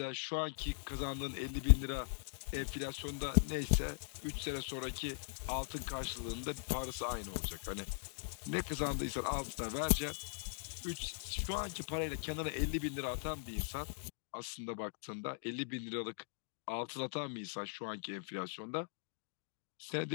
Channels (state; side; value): silent; right; digital silence